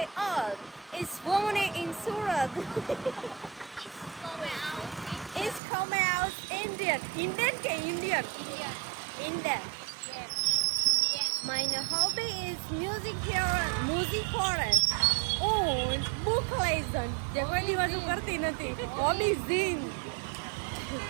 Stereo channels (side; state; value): left; drops out; at 5.6 s